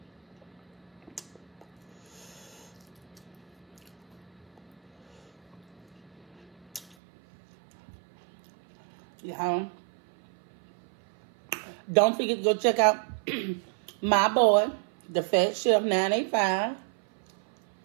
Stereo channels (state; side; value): drops out; left; at 7.0 s